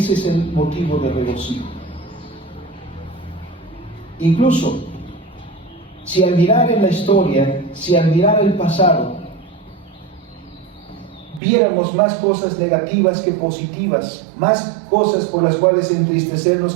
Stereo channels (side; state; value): left; drops out; at 11.4 s